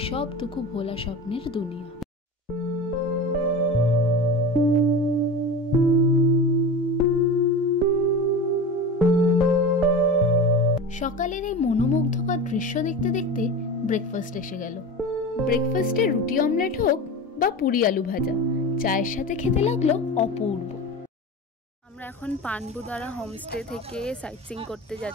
সব দুঃখ ভোলা স্বপ্নের দুনিয়া। সকালের এই মনোমুগ্ধকর দৃশ্য দেখতে দেখতে ব্রেকফাস্ট এসে গেল। ব্রেকফাস্টে রুটি অমলেট হোক বা পুরি আলু ভাজা, চায়ের সাথে খেতে লাগলো অপূর্ব। আমরা এখন পানবুদারা হোমস্টে থেকে সাইট সিইং করতে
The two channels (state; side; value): normal; both; correlation 0.29